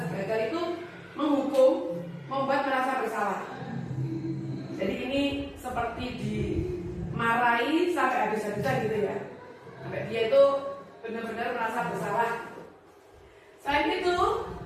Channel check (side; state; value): both; identical; correlation 1.00